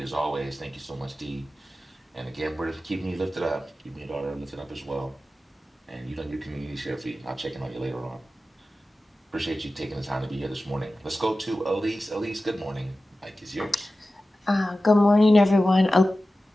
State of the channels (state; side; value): normal; both; correlation 0.95